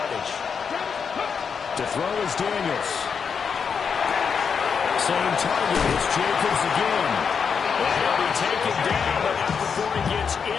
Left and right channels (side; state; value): right; quieter; 6.3 dB